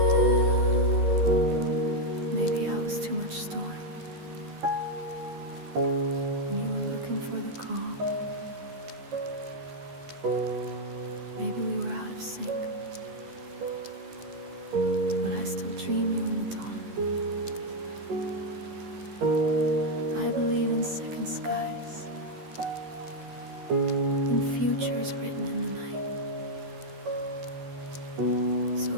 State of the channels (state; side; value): late; left; 12 ms